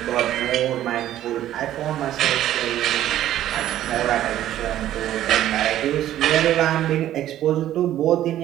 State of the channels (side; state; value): left; quieter; 12.6 dB